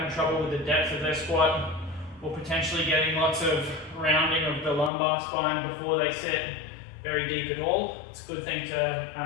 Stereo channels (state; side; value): drops out; right; at 4.9 s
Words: trouble with the depth of their squat, or potentially getting lots of rounding of the lumbar spine before they sit very deep at all. It's a good thing to